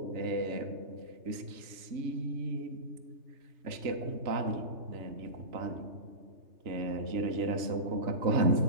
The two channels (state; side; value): late; left; 3.3 ms